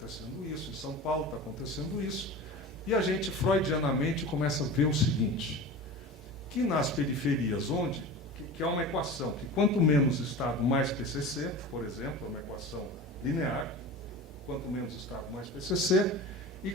isso, em São Paulo está acontecendo isso, e a gente, freudianamente, começa a ver o seguinte, que nas periferias, que é uma equação, que quanto menos Estado, mais PCC, por exemplo, é uma equação linear, quanto menos Estado, mais PCC, e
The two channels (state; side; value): normal; both; correlation 0.33